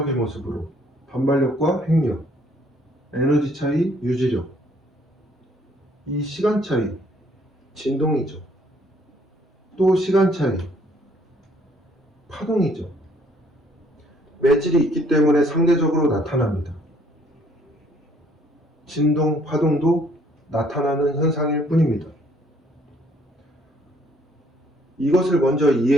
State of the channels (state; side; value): normal; both; correlation 0.63